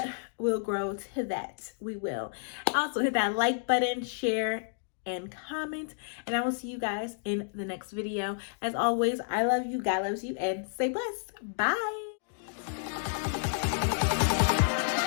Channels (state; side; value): silent; right; digital silence